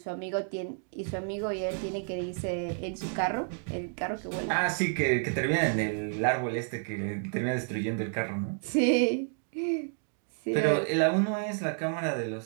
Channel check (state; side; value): silent; left; 58 dB below the other